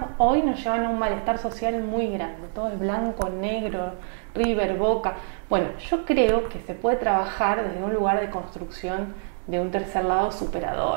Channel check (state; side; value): silent; left; 61 dB below the other